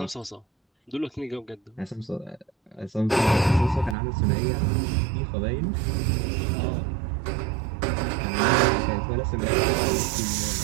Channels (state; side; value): drops out; left; at 4.0 s